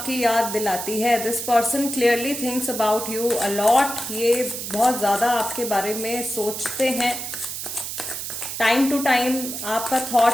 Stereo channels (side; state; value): right; noise; hiss, 6 dB below the sound